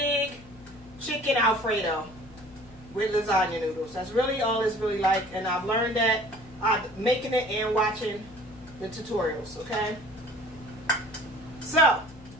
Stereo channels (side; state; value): left; noise; hum, 22 dB below the sound